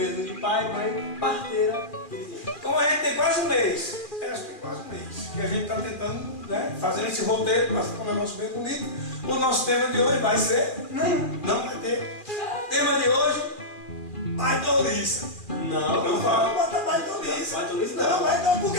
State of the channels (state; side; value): late; right; 2.4 ms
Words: de pai, mãe, parteira e vizinho. Como a gente tem quase um mês, acho que tem quase um mês, que a gente está tentando, né, fazer esse roteiro para ficar um negócio bem bonito. O nosso tema de hoje vai ser... Não vai ter. Tema de hoje, baidoliça. Não vai botar baidoliça. Baidoliça Não, baidoliça, por